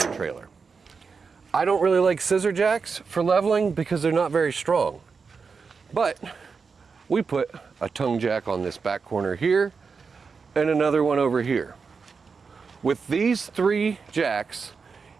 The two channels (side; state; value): left; quieter; 5.2 dB